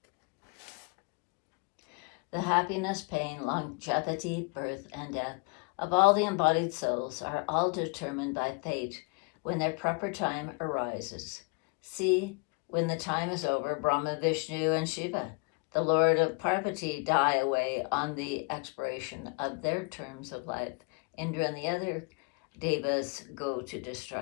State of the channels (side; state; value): right; quieter; 33.1 dB